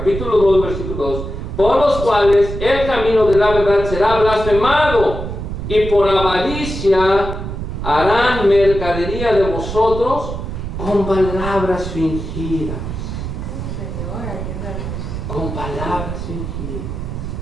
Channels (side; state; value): right; noise; rumble, 6 dB below the sound